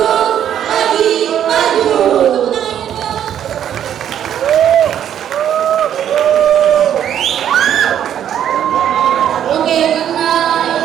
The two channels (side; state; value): left; quieter; 10.0 dB